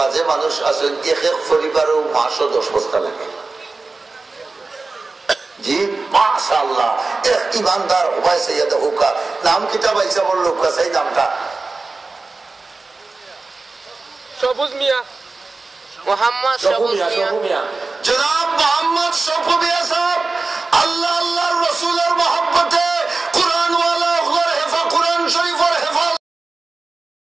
মানুষ আছেন এক এক পরিবারেও মাসও 10 বস্তা লাগে জি মাশাআল্লাহ এক ইমানদার হুবাই সৈয়দ হুকা নাম কিতাব আইসা বড় লোক কাছে নামটা সবুজ মিয়া মোহাম্মদ সবুজ মিয়া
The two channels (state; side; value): quieter; left; 3.7 dB